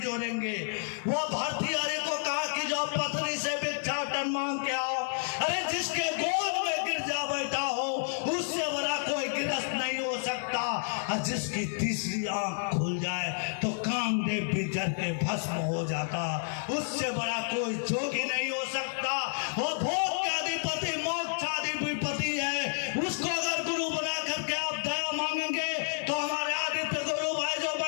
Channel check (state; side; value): silent; right; 57 dB below the other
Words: जोड़ेंगे। वो भर्तृहरि को कहा कि जो पत्नी से भिक्षाटन मांग के आओ। अरे जिसके गोद में गिरजा बैठा हो, उससे बड़ा कोई गिरस्त नहीं हो सकता। और जिसकी तीसरी आंख खुल जाए तो कामदेव भी जल के भस्म हो जाता, उससे बड़ा कोई जोगी नहीं हो सकता। वो भोग के अधिपति मोक्षाधिपति है। उसको अगर गुरु बना करके आप दया मांगेंगे तो हमारे आदित्य गुरु भाई जो